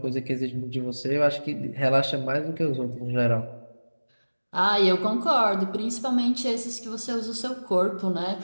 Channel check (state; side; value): inverted; both; correlation -1.00